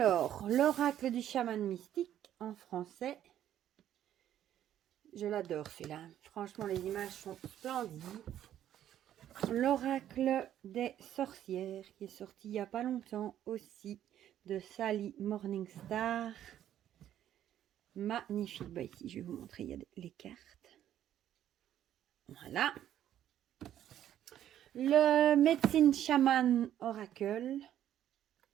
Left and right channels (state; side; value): quieter; left; 11.2 dB